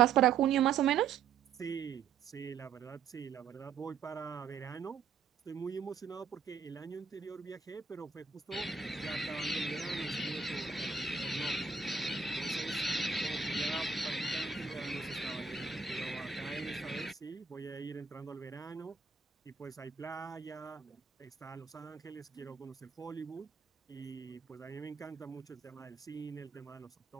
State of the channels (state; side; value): quieter; left; 6.1 dB